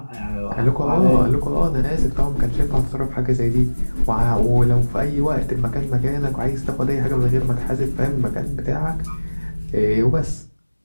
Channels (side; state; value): both; inverted; correlation -1.00